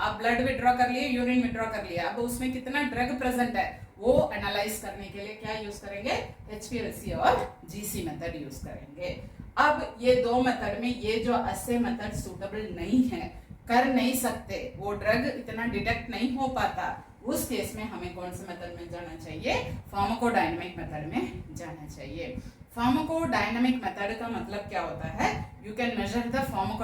ब्लड विड्रॉ कर लिए, यूरिन विड्रॉ कर लिया, अब उसमें कितना ड्रग प्रेजेंट है वो एनालाइज करने के लिए क्या यूज करेंगे? HPLC और GC मेथड यूज करेंगे। अब ये 2 मेथड में ये जो ऐसे मेथड सूटेबल नहीं है, कर नहीं सकते, वो ड्रग इतना डिटेक्ट नहीं हो पाता, उस केस में हमें कौन से मेथड में जाना चाहिए? फार्माकोडायनेमिक मेथड में जाना चाहिए। फार्माकोडायनेमिक मेथड का मतलब क्या होता है? You can measure the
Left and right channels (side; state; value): both; identical; correlation 1.00